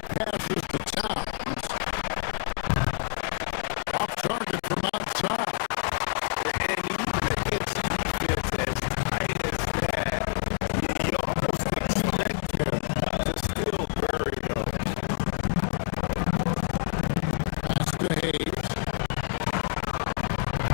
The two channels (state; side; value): silent; right; digital silence